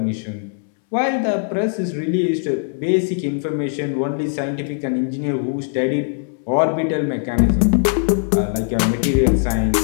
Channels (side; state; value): right; silent; 66 dB below the other